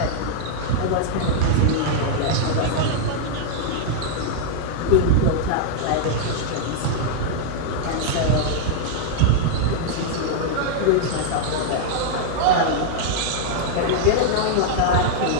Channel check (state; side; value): different; both; correlation -0.01